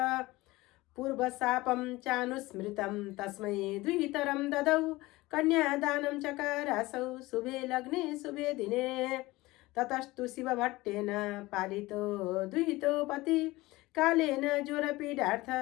पूर्वशापं चानुस्मृतं तस्मै द्वितरं ददौ कन्यादानं चकारासौ शुभे लग्ने शुभे दिने ततस्तु शिवभट्टेन पालितो दुहितो पति कालेन ज्वरपीडार्थ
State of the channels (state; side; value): quieter; right; 20.0 dB